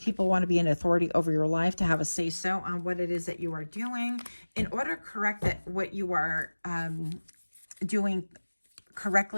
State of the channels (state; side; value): inverted; both; correlation -1.00